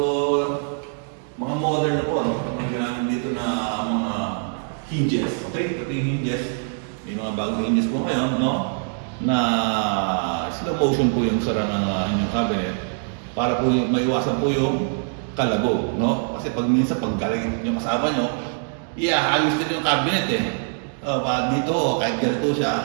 mga modern na po, no? Ang ginamit dito na mga hinges. Okay? Ito yung hinges. May mga bagong hinges po ngayon, no? Na slow motion po yung sara ng inyong cabinet para po maiwasan po yung kalabog, no? Kasi pag minsan pag galing yung kasama nyo, halos din yung cabinet eh. Dito, kahit ganito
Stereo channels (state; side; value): silent; left; 63 dB below the other